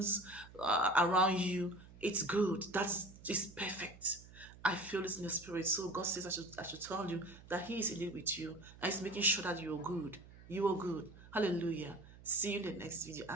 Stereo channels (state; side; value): noise; right; hum, 20 dB below the sound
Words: around you. It's good. It's perfect. I feel this in the spirit. So God says I should tell you that He is indeed with you. And He's making sure that you're good. You are good. Hallelujah. See you in the next video. I